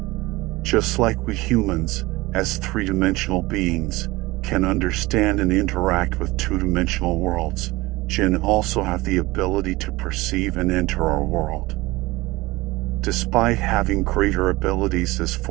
Just like we humans, as three-dimensional beings, can understand and interact with two-dimensional worlds, jinn also have the ability to perceive and enter our world. Despite having greater abilities as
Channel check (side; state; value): left; quieter; 20.7 dB